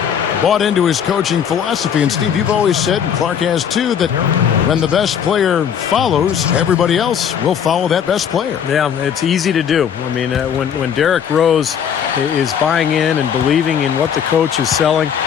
bought into his coaching philosophy. And Steve, you've always said, and Clark has too, that when the best player follows, everybody else will follow that best player. Yeah, it's easy to do. I mean, when Derrick Rose is buying in and believing in what the coach is selling,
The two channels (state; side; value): quieter; right; 8.2 dB